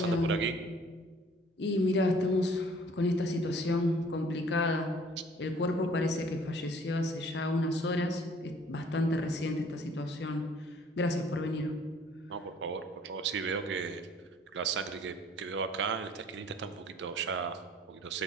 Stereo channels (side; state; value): both; normal; correlation 0.55